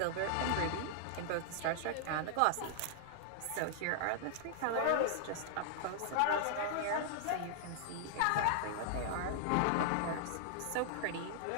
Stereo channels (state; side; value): different; both; correlation -0.01